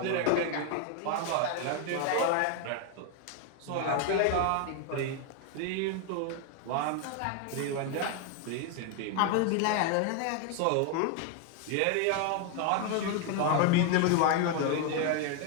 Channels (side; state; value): both; different; correlation 0.01